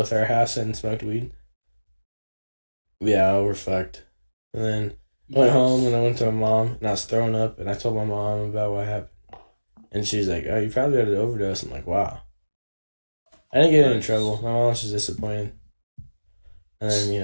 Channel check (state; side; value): inverted; both; correlation -1.00